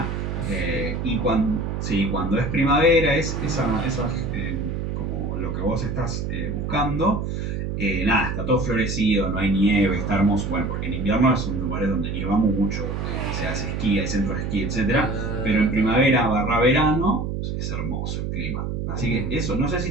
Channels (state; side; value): noise; right; hum, 3 dB below the sound